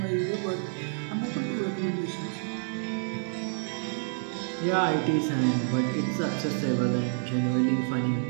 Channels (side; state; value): left; silent; digital silence